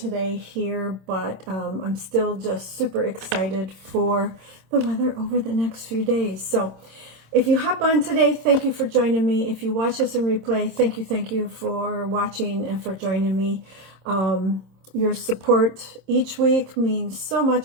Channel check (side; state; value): left; late; 26 ms